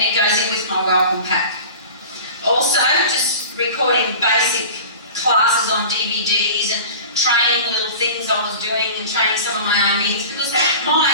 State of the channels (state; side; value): inverted; both; correlation -0.37